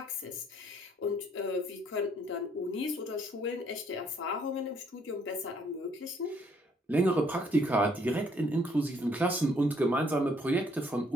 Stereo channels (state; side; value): normal; both; correlation 0.66